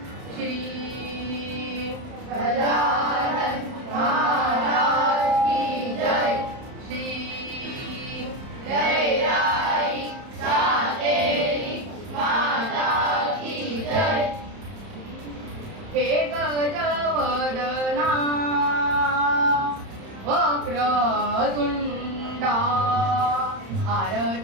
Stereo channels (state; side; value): late; left; 31 ms